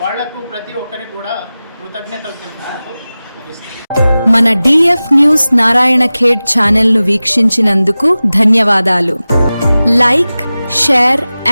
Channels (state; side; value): inverted; both; correlation -0.97